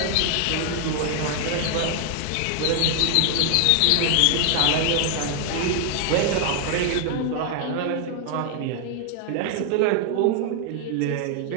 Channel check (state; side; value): different; both; correlation 0.00